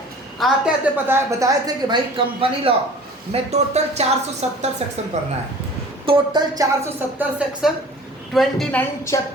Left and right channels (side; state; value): both; normal; correlation 0.45